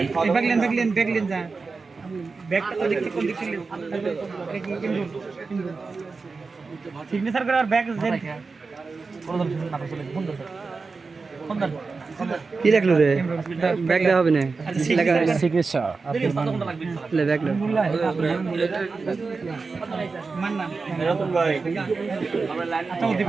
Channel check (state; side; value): quieter; left; 4.3 dB